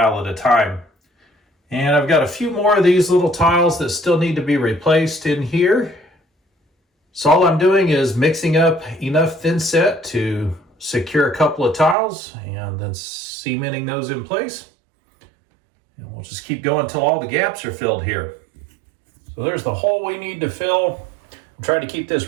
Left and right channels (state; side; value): drops out; left; at 12.0 s